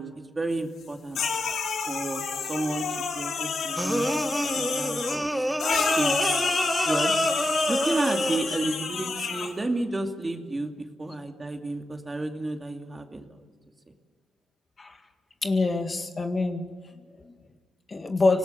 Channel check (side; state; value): both; normal; correlation 0.88